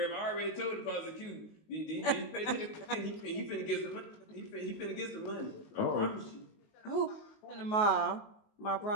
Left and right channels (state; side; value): late; right; 19 ms